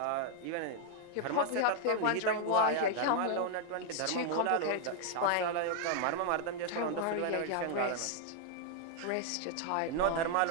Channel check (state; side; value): different; both; correlation 0.00